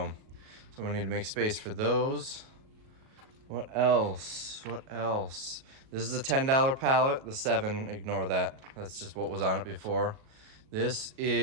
So I need to make space for those. What else? What else? This is a $10 pallet. The 7, ignore that. That's just what was on it before. This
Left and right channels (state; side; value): late; left; 38 ms